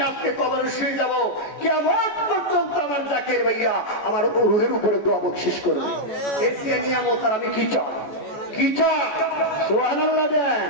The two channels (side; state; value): right; late; 14 ms